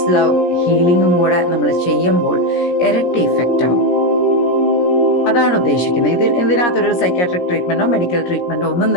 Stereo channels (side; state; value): right; late; 17 ms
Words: ലവ് ഹീലിംഗും കൂടെ നമ്മൾ ചെയ്യുമ്പോൾ ഇരട്ടി ഇഫക്റ്റ് ആവും. അതാണ് ഉദ്ദേശിക്കുന്നത്. ഇതിനകത്തൊരു സൈക്കാട്രിക് ട്രീറ്റ്മെന്റോ മെഡിക്കൽ ട്രീറ്റ്മെന്റോ ഒന്നും